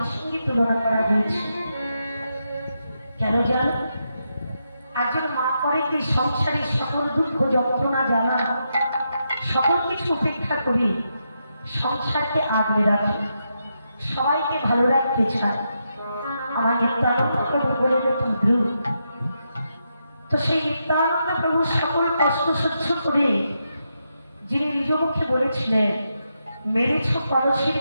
संगे तुलना करा হয়েছে কেন জানো একজন মা করে কি সংসারের সকল দুঃখ যন্ত্রণা জ্বালা সকল কিছু উপেক্ষা করে সংসারকে আগলে রাখে সবাইকে ভালো রাখতে চায় আমার নিত্যানন্দ প্রভু বলেন ধ্রুব তো সেই নিত্যানন্দ প্রভু সকল কষ্ট সহ্য করে যিনি নিজ মুখে বলেছিলেন মেরেছ কলসির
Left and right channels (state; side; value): inverted; both; correlation -0.83